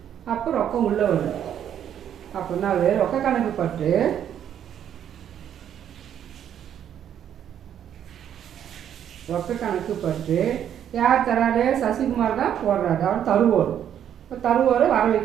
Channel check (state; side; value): quieter; left; 9.7 dB